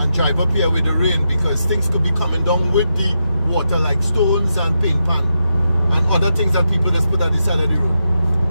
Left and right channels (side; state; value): both; inverted; correlation -0.85